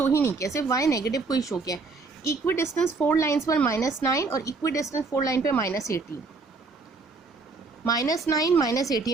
ही नहीं किया, सिर्फ y नेगेटिव को ही शो किया। इक्वी डिस्टेंस 4 लाइन्स पर -9 और इक्वी डिस्टेंस 4 लाइन पर -18, -9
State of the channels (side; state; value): left; quieter; 4.1 dB